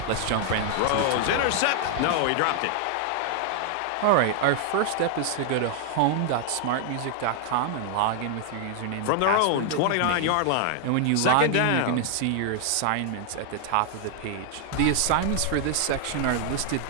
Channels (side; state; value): both; different; correlation 0.00